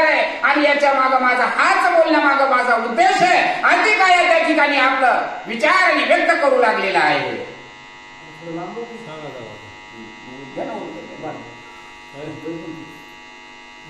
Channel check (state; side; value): identical; both; correlation 1.00